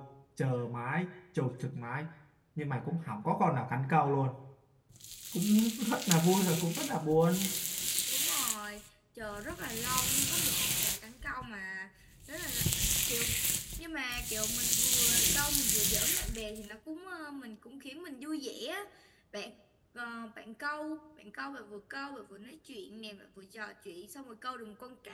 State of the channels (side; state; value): both; identical; correlation 1.00